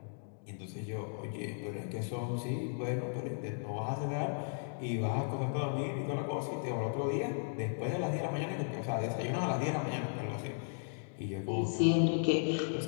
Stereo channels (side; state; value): right; silent; digital silence